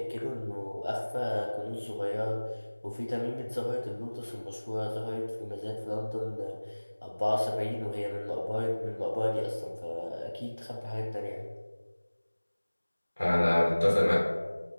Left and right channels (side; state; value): both; inverted; correlation -1.00